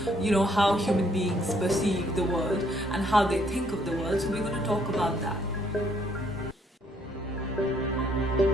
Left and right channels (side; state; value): both; normal; correlation 0.67